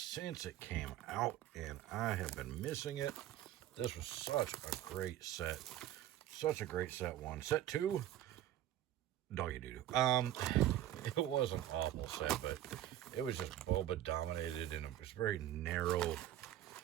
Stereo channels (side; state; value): left; quieter; 12.6 dB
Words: it came out, and I have been missing it. This was such a great set, such a great set one. Set two, doggy doo doo. It was an awful set, but it was just Boba dominated, and it was very narrow,